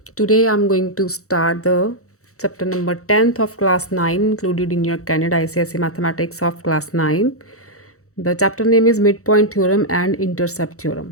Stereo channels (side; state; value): right; late; 0.64 ms